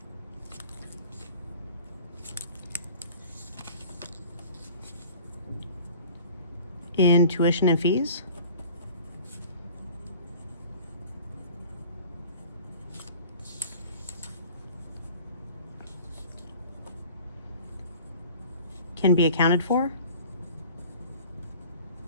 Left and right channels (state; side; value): inverted; both; correlation -0.46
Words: in tuition and fees can be accounted for